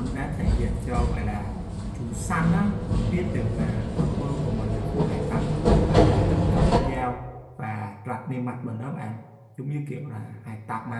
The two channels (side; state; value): both; identical; correlation 1.00